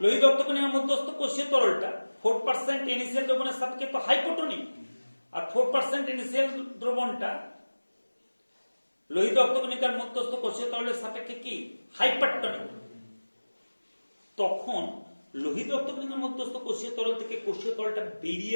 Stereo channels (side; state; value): both; inverted; correlation -1.00